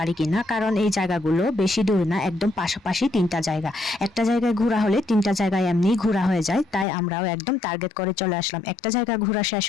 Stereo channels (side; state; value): right; drops out; at 6.9 s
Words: কিনা, কারণ এই জায়গাগুলো বেশি দূর না, একদম পাশাপাশি 3টা জায়গা। একটা জায়গায় ঘোরা হলে 3টা জায়গায় এমনি ঘোরা হয়ে যায়, তাই আমরাও একদম টার্গেট করে চলে আসলাম। একটা জায়গা ঘোরা শেষ